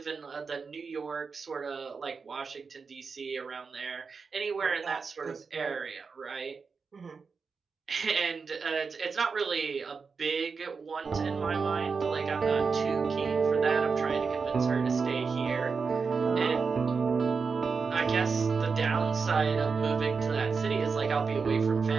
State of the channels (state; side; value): quieter; left; 5.1 dB